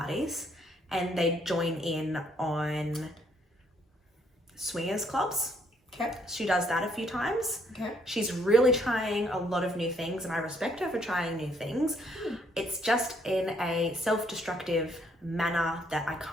and they join in on swingers clubs. Okay. She does that a few times. Okay. She's really trying a lot of new things, and I respect her for trying new things. It's just in a self-destructive manner that I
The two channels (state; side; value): normal; both; correlation 0.69